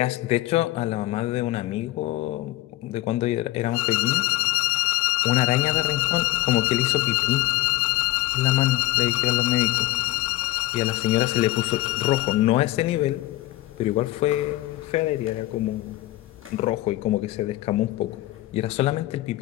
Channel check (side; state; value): right; quieter; 17.3 dB